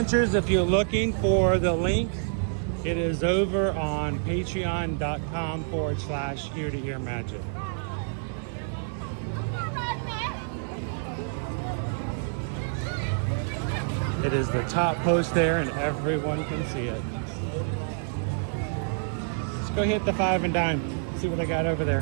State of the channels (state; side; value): silent; left; digital silence